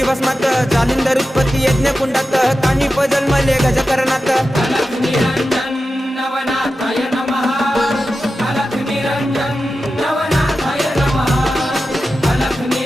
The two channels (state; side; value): normal; both; correlation 0.92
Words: भस्मात, जालिंदर उत्पत्ती यज्ञ कुंडात, कानिप जन्मले गजकरणात. अलख निरंजन नवनाथाय नमः, अलख निरंजन नवनाथाय नमः, अलख